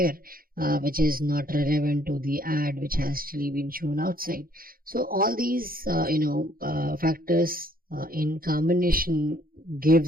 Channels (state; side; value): late; left; 0.42 ms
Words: which is not relevant to the ad which has actually been shown outside. So all these factors in combination